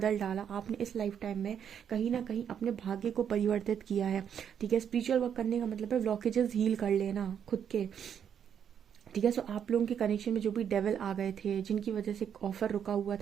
डाला। आपने इस लाइफ टाइम में कहीं ना कहीं अपने भाग्य को परिवर्तित किया है, ठीक है। स्पिरिचुअल वर्क करने का मतलब है ब्लॉकेजेस हील कर लेना खुद के, ठीक है। सो आप लोगों के कनेक्शन में जो भी डेविल आ गए थे, जिनकी वजह से ऑफर रुका हुआ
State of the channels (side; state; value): left; quieter; 8.4 dB